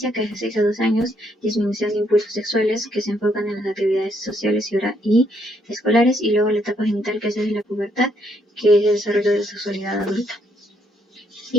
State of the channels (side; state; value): both; normal; correlation 0.72